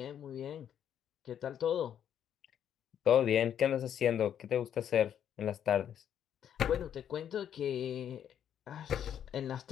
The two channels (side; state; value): right; quieter; 9.5 dB